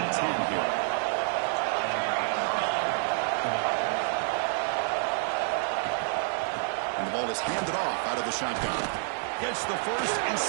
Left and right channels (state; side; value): silent; left; digital silence